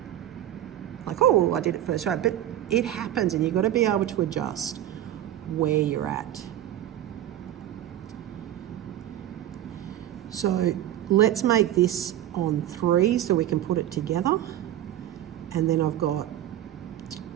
like, oh, I did it first, right? But it happens, and you've got to be able to adjust where you're at. So let's make this on 3 so we can put it together. And then I've got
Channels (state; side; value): quieter; left; 12.5 dB